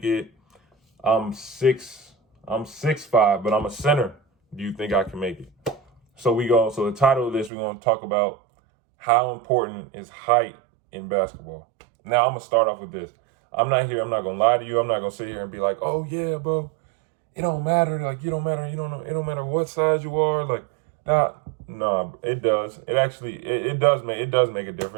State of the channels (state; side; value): drops out; left; at 7.5 s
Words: it? I'm 6'5", but I'm a center. Do you think I can make it? So the title of this, we're gonna talk about how important is height in basketball. Now I'm gonna start off with this. I'm not gonna lie to you. I'm not gonna sit here and be like, oh yeah, bro, it don't matter. Like, you don't matter. You don't know. It don't matter what size you are. Like, nah, it does. It does make a